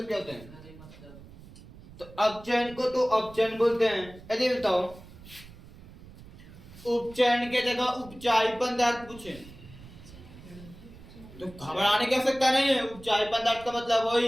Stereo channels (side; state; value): right; noise; rumble, 19 dB below the sound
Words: क्या होता है तो अपचयन को तो अपचयन बोलते हैं यदि बताओ उपचयन के जगह उपचायी पदार्थ पूछे तो घबराने की आवश्यकता नहीं है उपचायी पदार्थ का मतलब